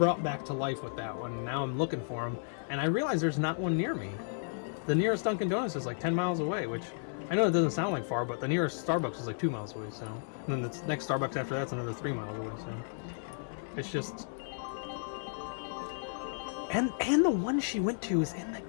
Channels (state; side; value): silent; right; digital silence